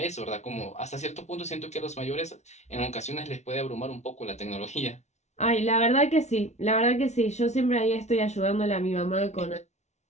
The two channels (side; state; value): right; late; 0.32 ms